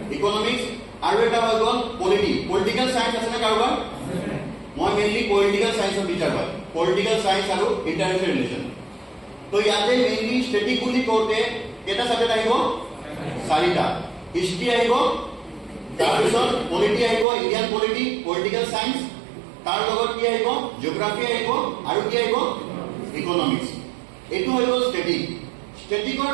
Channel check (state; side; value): drops out; left; at 17.2 s